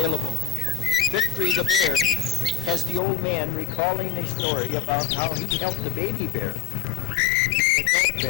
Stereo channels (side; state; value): right; drops out; at 3.0 s